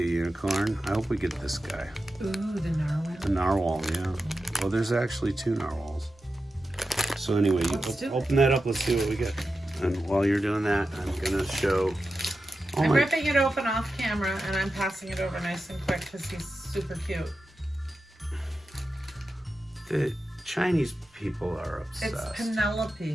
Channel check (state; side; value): normal; both; correlation 0.91